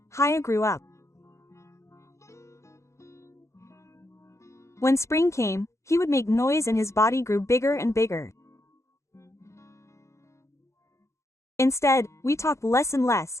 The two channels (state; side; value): late; right; 0.14 ms